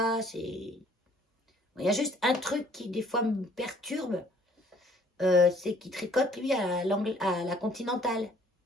Il y a juste un truc qui, des fois, me perturbe. C'est qu'il tricote, lui, à la continentale.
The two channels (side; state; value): both; normal; correlation 0.60